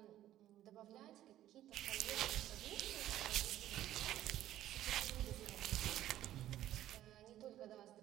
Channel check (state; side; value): quieter; left; 13.1 dB